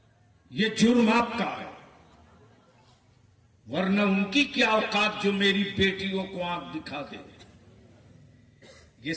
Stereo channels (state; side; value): identical; both; correlation 1.00